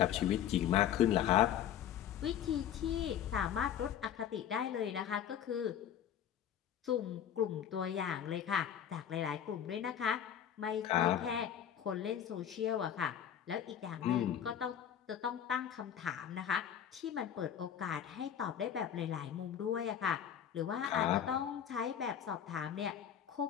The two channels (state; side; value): quieter; right; 9.5 dB